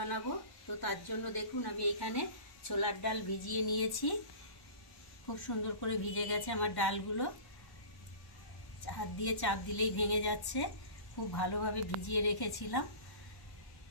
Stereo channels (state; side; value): late; right; 1.1 ms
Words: তো তার জন্য দেখুন আমি এখানে ছোলার ডাল ভিজিয়ে নিয়েছি। খুব সুন্দর করে ভিজে গেছে আমার ডালগুলো, হাত দিয়ে চাপ দিলেই ভেঙে যাচ্ছে। খুব ভালোভাবে ভিজিয়ে রেখেছিলাম।